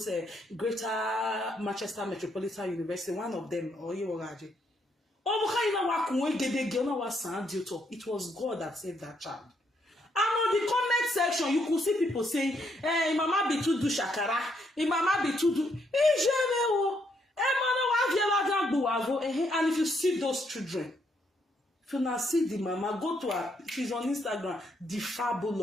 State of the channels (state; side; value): normal; both; correlation 0.74